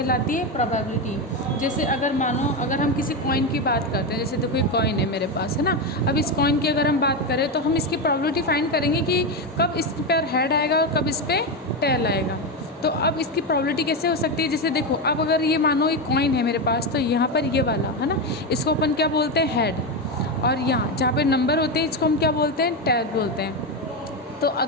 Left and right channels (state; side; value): normal; both; correlation 0.12